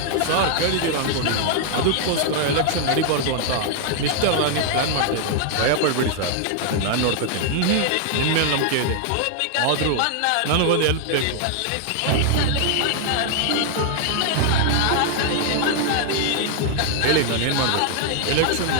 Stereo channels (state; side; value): different; both; correlation 0.00